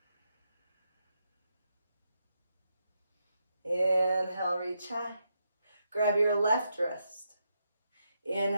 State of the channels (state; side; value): inverted; both; correlation -0.82